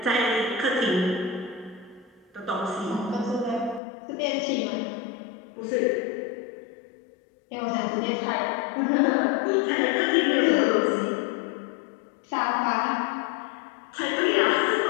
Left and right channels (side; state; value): right; drops out; at 3.8 s